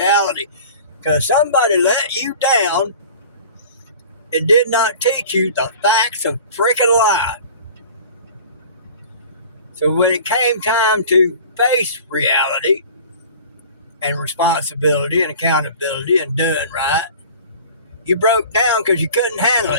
Because somebody let you down and did not teach you the facts of freaking life. So when it came time to face reality and responsibility and accountability and doing right, you broke down because you couldn't handle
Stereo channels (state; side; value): inverted; both; correlation -0.42